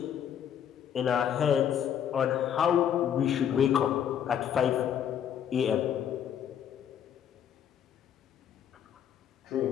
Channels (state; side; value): quieter; right; 9.1 dB